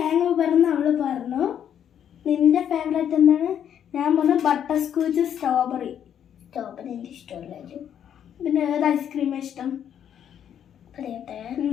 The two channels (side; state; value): right; quieter; 9.3 dB